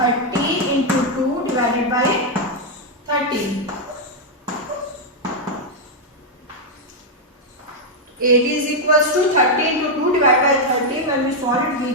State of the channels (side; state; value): both; normal; correlation -0.01